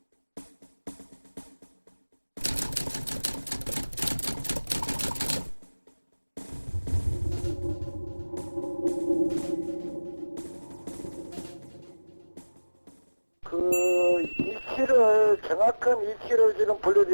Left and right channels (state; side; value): inverted; both; correlation -1.00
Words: 그 위치를 정확한 위치를 지금